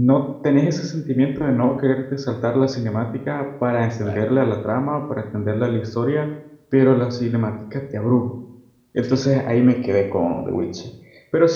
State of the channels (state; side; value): identical; both; correlation 1.00